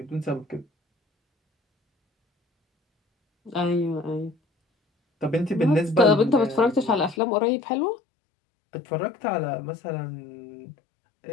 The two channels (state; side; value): drops out; right; at 7.2 s